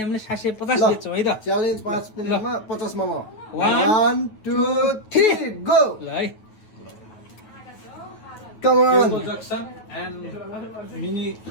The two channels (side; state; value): right; late; 9.3 ms